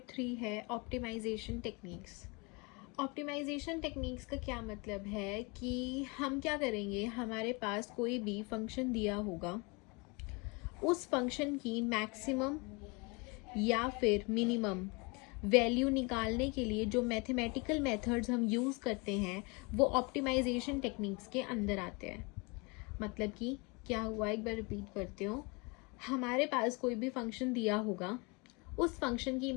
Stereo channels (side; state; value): right; quieter; 29.0 dB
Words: 3 है optimisation techniques. Optimisation techniques का क्या मतलब है कि हम क्या करेंगे, हमारे पास कोई भी फंक्शन दिया होगा, उस फंक्शन की मैक्सिमम या फिर मिनिमम वैल्यू निकालने के लिए जो मैथमेटिकल मेथड्स हम यूज़ करते हैं वो ऑप्टिमाइजेशन टेक्निक्स के अंदर आते हैं। मतलब कि क्या हुआ, एक बार रिपीट करते हो। हमारे पास कोई भी फंक्शन दिया होगा, उस फंक्शन की